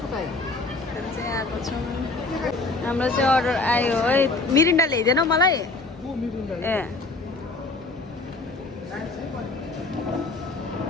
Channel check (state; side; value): quieter; right; 3.3 dB